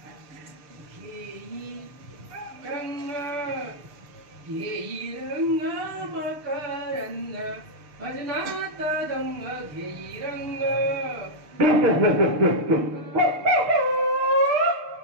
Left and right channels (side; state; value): left; late; 6.8 ms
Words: भजनात दंग घेई रंग.